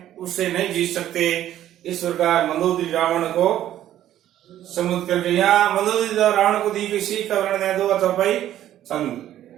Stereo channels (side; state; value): left; quieter; 12.2 dB